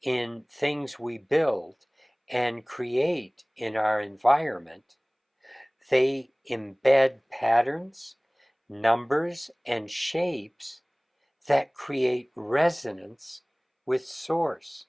in things we build and create in our environment, they embed patterns, numbers, and shapes that create resonance with Source,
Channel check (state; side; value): identical; both; correlation 1.00